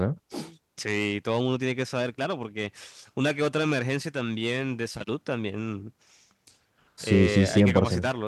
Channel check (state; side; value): identical; both; correlation 1.00